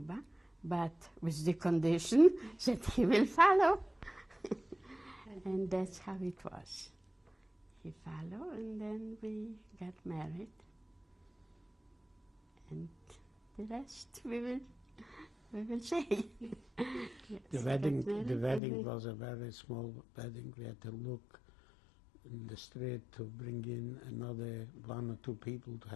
but with the condition that he will follow. And that's how it was. He followed, and then we got married. and the rest we will say. Yes, The wedding was a very small wedding. We had to look in the street to bring in another 1 or 2 people to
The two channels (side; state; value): right; drops out; at 18.6 s